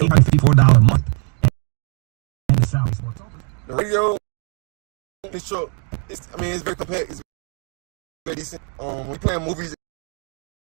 a month. And the salary sports over. The radio on this truck, it's very compact. It's very decent. When we playing movies,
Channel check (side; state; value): left; quieter; 38.8 dB